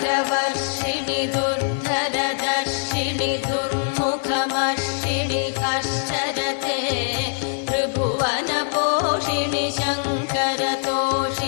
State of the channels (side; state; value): right; silent; 63 dB below the other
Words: दुर्धरदर्शिनि दुर्मुखमर्षिणि हर्षरते त्रिभुवनपोषिणि